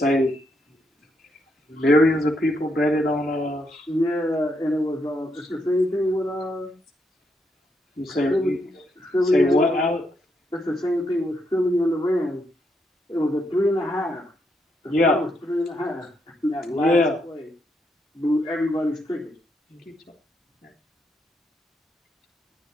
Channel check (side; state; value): both; normal; correlation 0.78